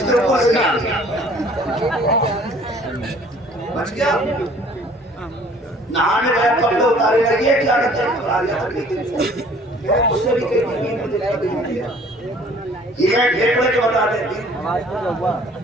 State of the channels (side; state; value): both; normal; correlation 0.54